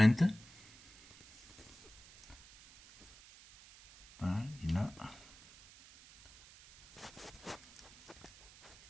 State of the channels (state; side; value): noise; right; hiss, 21 dB below the sound